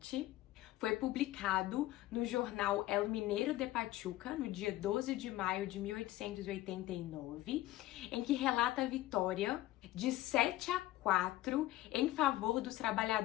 foi publicado no jornal El Mineiro de Pachuca, no dia 12 de maio de 1889, em que relata a vitória de 7-4 em favor dos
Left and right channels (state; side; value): quieter; right; 15.9 dB